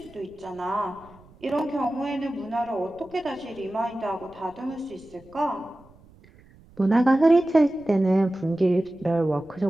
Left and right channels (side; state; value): right; noise; rumble, 26 dB below the sound